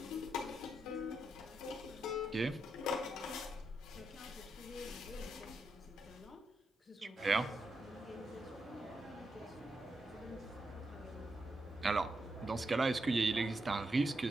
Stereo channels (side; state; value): both; normal; correlation 0.84